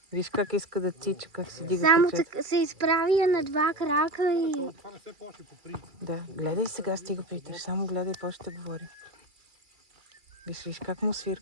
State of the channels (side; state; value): left; late; 2.3 ms